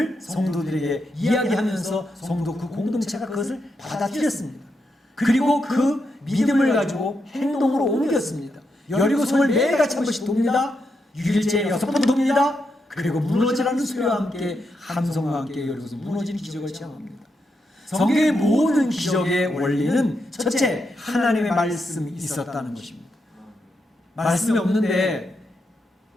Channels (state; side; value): normal; both; correlation 0.83